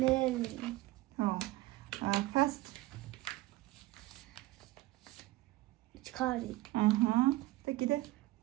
ხო. Fast. ჩქარი. აჰა. და კიდე?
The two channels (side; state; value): left; quieter; 18.1 dB